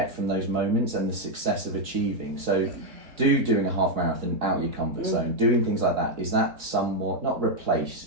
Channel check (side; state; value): left; late; 3.8 ms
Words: from those moments and the success of achieving. So doing a half marathon out your comfort zone, doing things like that, is that somewhat, not